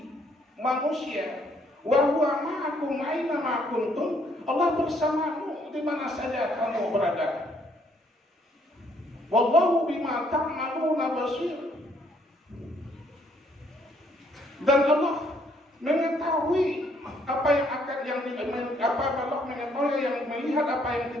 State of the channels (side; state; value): both; normal; correlation 0.68